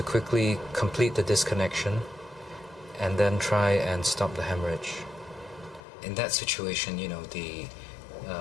quickly complete the disconnection and then try and stop the hemorrhage. In that situation, you know, the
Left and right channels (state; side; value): drops out; right; at 5.8 s